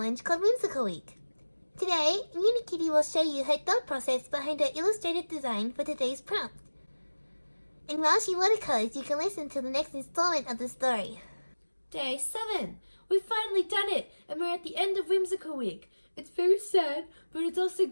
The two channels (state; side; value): inverted; both; correlation -1.00